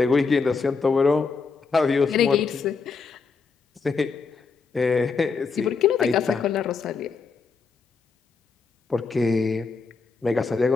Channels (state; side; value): quieter; right; 4.8 dB